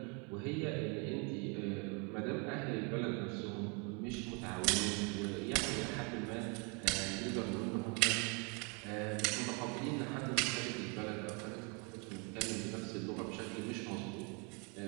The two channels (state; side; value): quieter; left; 33.7 dB